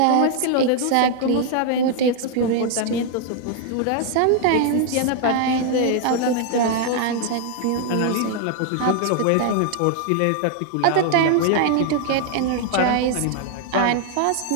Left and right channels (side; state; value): both; different; correlation 0.00